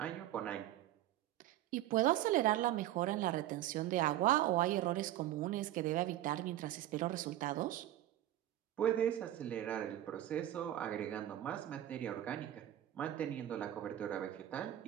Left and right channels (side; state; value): left; quieter; 13.4 dB